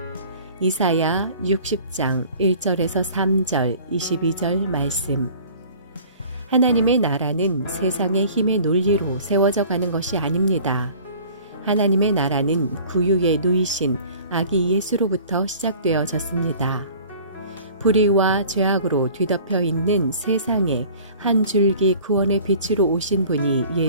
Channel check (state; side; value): inverted; both; correlation -0.47